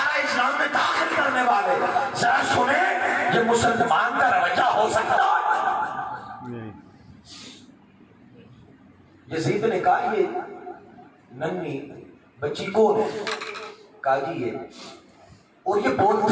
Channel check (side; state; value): both; identical; correlation 1.00